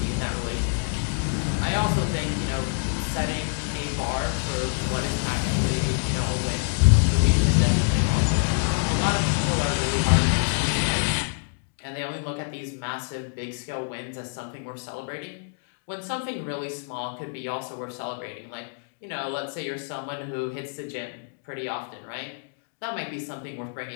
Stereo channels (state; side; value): silent; right; digital silence